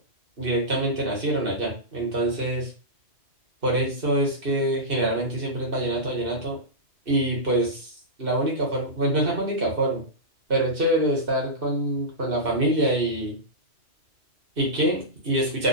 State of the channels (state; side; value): late; left; 2.6 ms